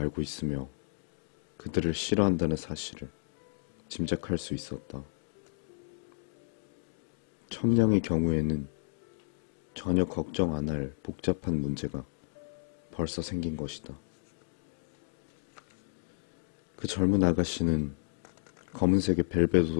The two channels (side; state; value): right; silent; digital silence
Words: 있으며 그들을 싫어한다는 사실을 짐작할 수 있었다. 첨량의 경우에는 전혀 걱정 안 할 복잡한 문제가 벌써 생긴 것이다. 그 젊은 아가씨는 검은색의